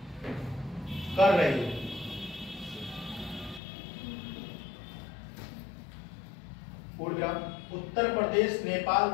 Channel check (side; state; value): right; drops out; at 3.6 s